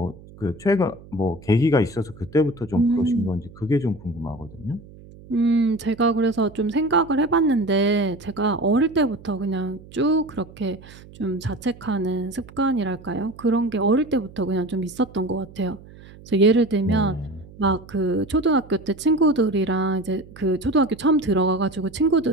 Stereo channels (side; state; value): right; noise; hum, 20 dB below the sound